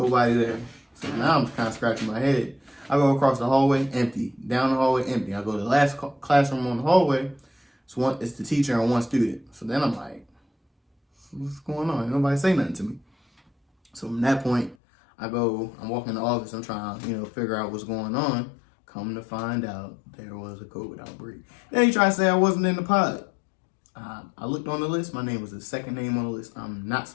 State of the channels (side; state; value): right; drops out; at 14.8 s